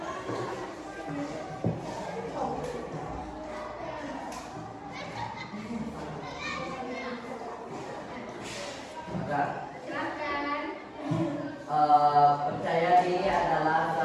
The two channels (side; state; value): both; identical; correlation 1.00